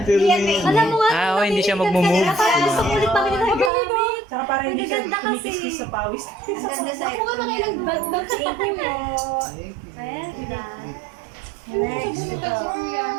pero may... Alam mo nga. Ah, hindi siya magmumove. Parang gusto ko ulit pamili ng gamit. Tsaka parang hindi siya Maganda kasi. kumikiskis sa pawis. Ang ganda sa Ako nga nakailang mag-check mo. Pwede. Next.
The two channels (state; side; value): drops out; left; at 3.7 s